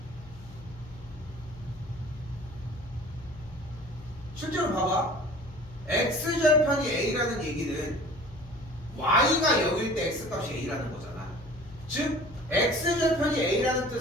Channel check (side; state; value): left; noise; hum, 18 dB below the sound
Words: 실제로 봐봐. x절편이 a라는 얘기는 y가 0일 때 x값이 a라는 거잖아. 즉 x절편이 a라는